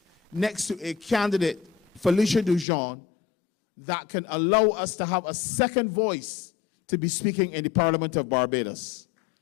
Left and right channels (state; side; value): drops out; right; at 2.7 s